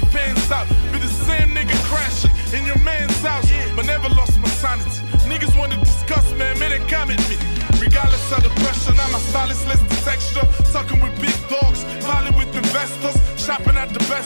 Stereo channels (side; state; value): both; inverted; correlation -1.00